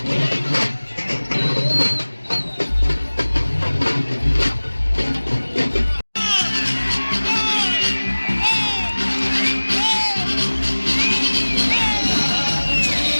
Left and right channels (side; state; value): both; inverted; correlation -1.00